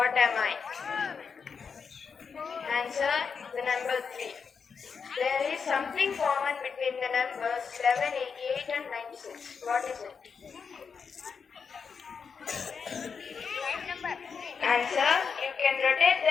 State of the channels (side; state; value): right; quieter; 5.9 dB